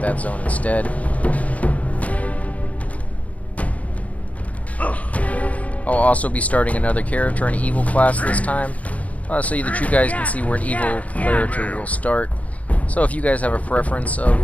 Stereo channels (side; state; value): right; late; 0.068 ms